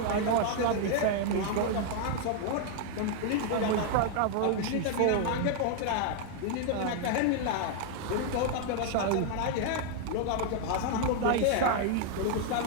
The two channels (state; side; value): different; both; correlation 0.00